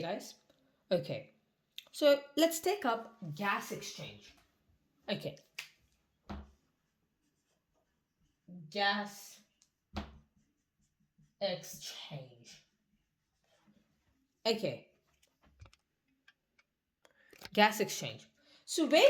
guys? Okay. So let's take up gas exchange. Okay. Gas exchange. Okay, gas exchange. So where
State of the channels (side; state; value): both; identical; correlation 1.00